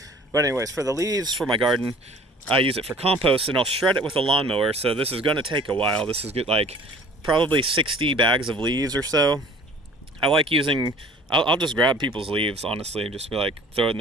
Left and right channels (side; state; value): both; normal; correlation 0.49